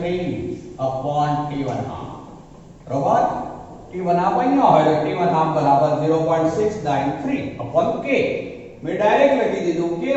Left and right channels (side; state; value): both; identical; correlation 1.00